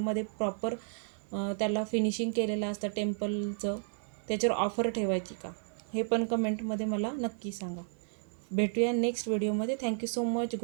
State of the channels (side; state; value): left; silent; 56 dB below the other